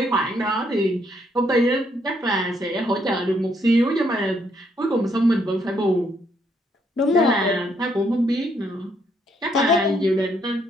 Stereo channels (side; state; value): both; normal; correlation 0.72